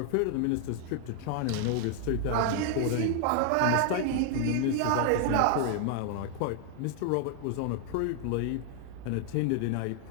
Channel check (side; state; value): both; different; correlation 0.00